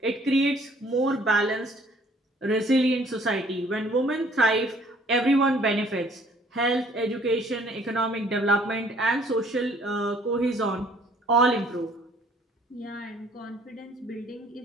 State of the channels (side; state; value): both; normal; correlation 0.59